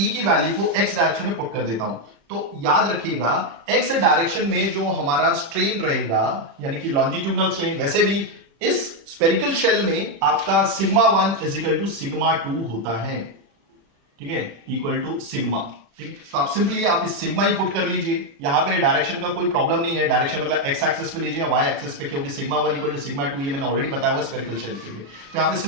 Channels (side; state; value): left; late; 36 ms